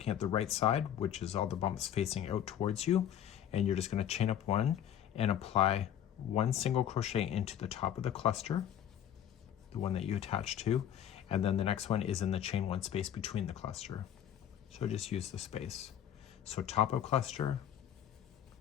at the right side, which is all the bumps facing out towards you, and you're just going to chain up 1 and apply 1 single crochet into the top of the cluster, the one that you attach to, and then the next one is in the chain 1 space between the cluster. So just use the space. So top of cluster,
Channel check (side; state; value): right; quieter; 10.1 dB